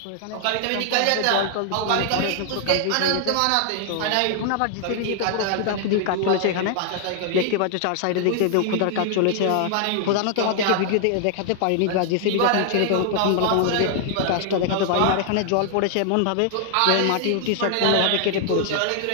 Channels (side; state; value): both; different; correlation 0.00